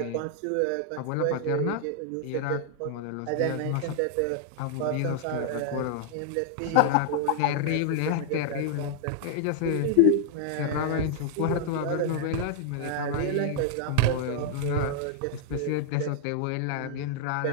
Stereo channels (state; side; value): different; both; correlation -0.01